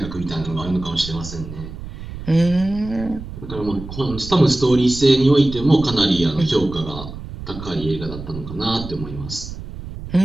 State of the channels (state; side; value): noise; right; rumble, 11 dB below the sound